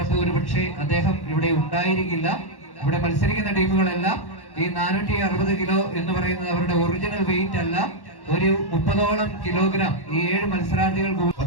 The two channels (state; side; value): late; right; 1.1 ms